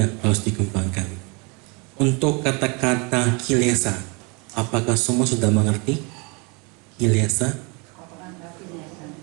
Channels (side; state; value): left; quieter; 30.5 dB